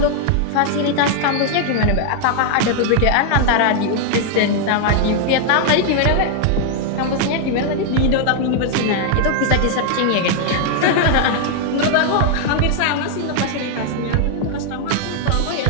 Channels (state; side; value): different; both; correlation 0.00